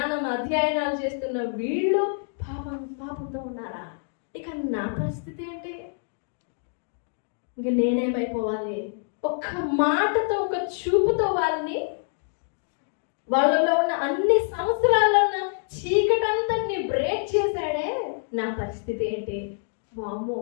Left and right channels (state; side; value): silent; right; 61 dB below the other